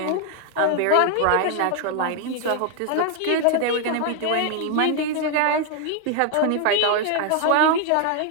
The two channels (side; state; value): both; different; correlation 0.00